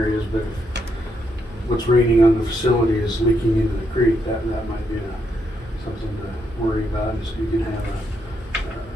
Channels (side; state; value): both; normal; correlation 0.78